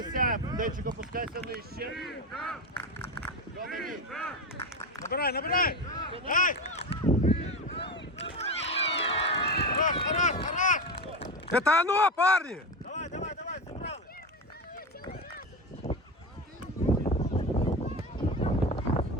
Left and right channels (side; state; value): both; normal; correlation 0.19